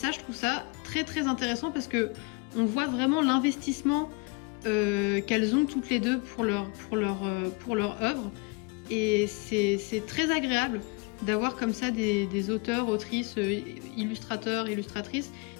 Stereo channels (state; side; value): quieter; right; 30.0 dB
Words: je trouve ça très intéressant parce que on voit vraiment l'investissement qu'elles ont toutes les deux pour leur œuvre. Et c'est très agréable d'avoir comme ça des auteurs, autrices, illustrateurs, illustratrices